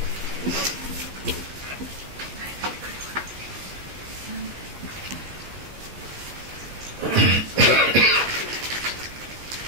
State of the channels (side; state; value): left; late; 15 ms